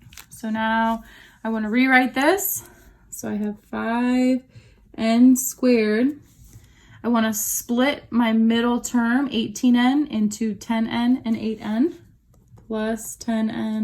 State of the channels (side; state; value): both; identical; correlation 1.00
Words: So now I want to rewrite this. So I have 5n squared. I want to split my middle term, 18n, into 10n and 8n, plus